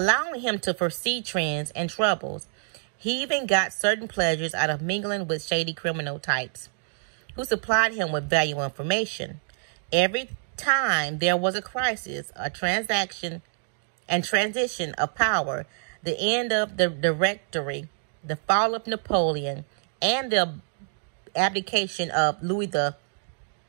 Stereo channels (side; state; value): left; silent; 60 dB below the other